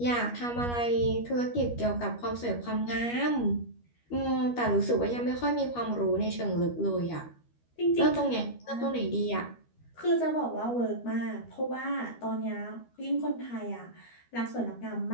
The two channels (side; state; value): right; late; 13 ms